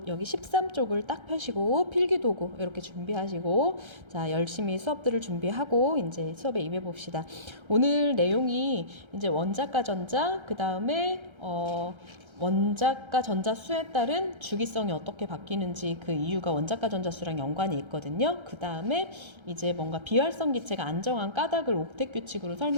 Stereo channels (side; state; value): left; late; 1.3 ms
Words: 여기 13쪽을 딱 펴시고 필기도구 이렇게 준비하시고 자, 열심히 수업들을 준비하고 이제 수업에 임해 봅시다. 오늘 내용이 이제 원자과 전자, 그다음에 원자과 전자수에 따른 주기성이 어떻게 바뀌는지 그 이유가 원자과 전자수랑 연관이 있거든요. 그 다음에 이제 뭔가 비활성 기체가 안정한 까닭을 옥텟 규칙으로